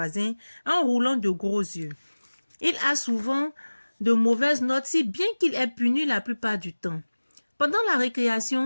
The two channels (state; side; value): inverted; both; correlation -1.00